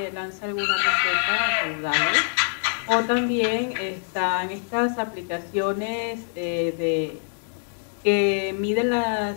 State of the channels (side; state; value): right; silent; digital silence